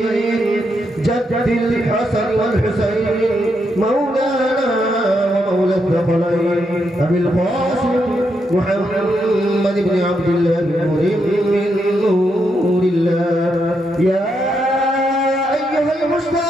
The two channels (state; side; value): normal; both; correlation 0.80